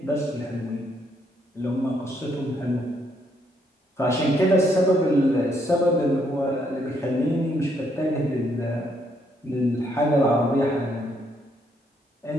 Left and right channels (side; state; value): both; normal; correlation 0.72